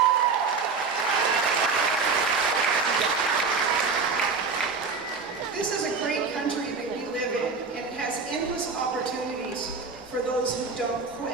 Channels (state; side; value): quieter; left; 4.7 dB